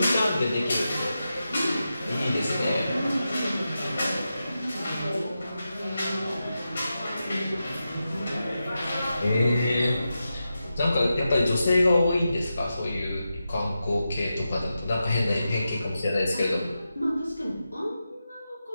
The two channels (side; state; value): both; inverted; correlation -0.90